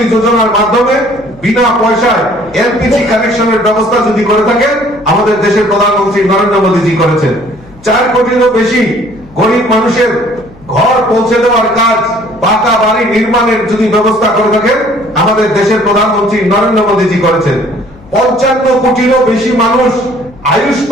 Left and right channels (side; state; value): left; noise; hum, 24 dB below the sound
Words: যোজনার মাধ্যমে বিনা পয়সায় এলপিজি কানেকশনের ব্যবস্থা যদি করে থাকেন আমাদের দেশের প্রধানমন্ত্রী নরেন্দ্র মোদীজি করেছেন। 4 কোটিরও বেশি গরিব মানুষের ঘর পৌঁছে দেওয়ার কাজ, পাকা বাড়ি নির্মাণের যদি ব্যবস্থা করে থাকেন আমাদের দেশের প্রধানমন্ত্রী নরেন্দ্র মোদীজি করেছেন। 55 কোটিরও বেশি মানুষ